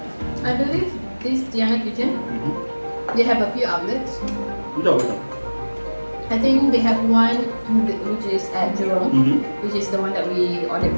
I believe this Deanna kitchen, they have a few outlets. Betul. I think they have one which is at Jurong, which is the one that we ordered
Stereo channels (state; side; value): inverted; both; correlation -1.00